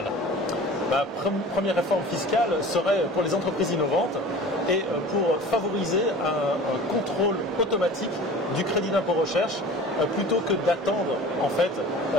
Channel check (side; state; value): both; normal; correlation 0.41